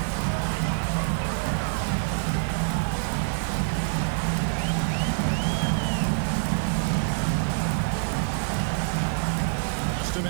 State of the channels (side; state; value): left; silent; digital silence